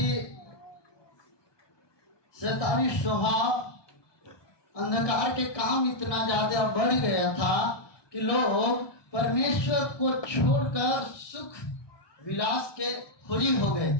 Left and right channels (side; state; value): right; late; 1.2 ms